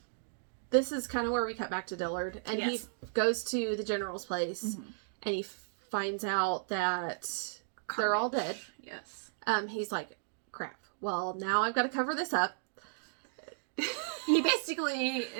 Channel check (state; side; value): silent; left; digital silence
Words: this is kind of where we cut back to Dillard. And Yes. he goes to the general's place, and he finds out that they're all dead. Yes. He's like, crap. Well, now I've got to cover this up. He basically